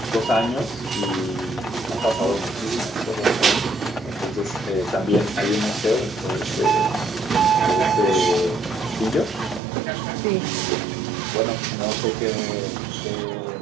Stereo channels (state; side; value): drops out; left; at 9.6 s